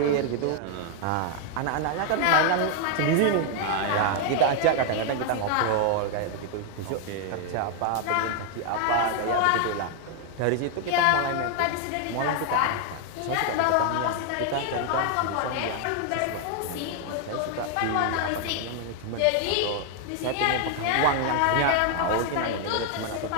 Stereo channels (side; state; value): both; different; correlation 0.00